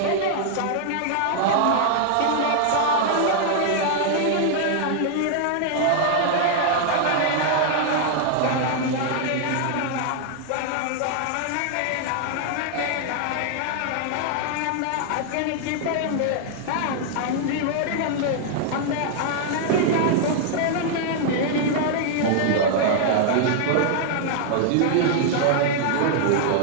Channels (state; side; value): different; both; correlation 0.00